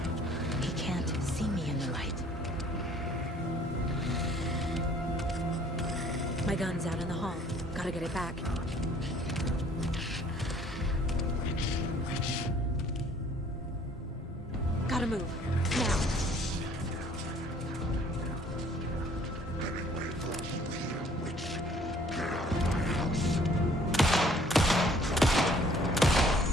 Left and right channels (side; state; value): both; normal; correlation 0.57